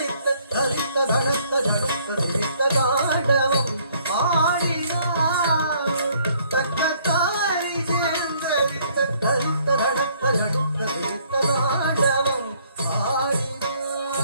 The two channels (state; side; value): inverted; both; correlation -0.63